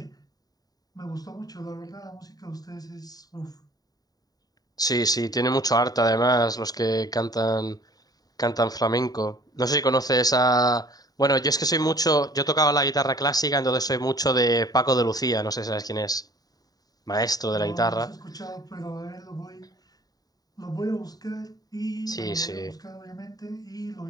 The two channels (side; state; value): right; late; 0.18 ms